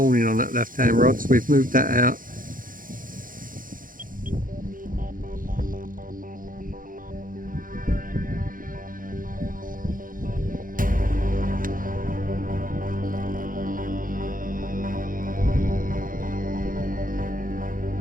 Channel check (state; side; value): late; left; 0.40 ms